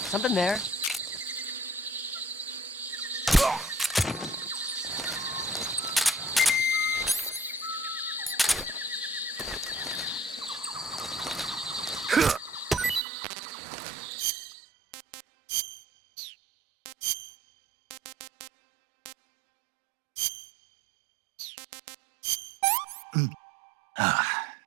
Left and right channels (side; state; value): left; drops out; at 13.0 s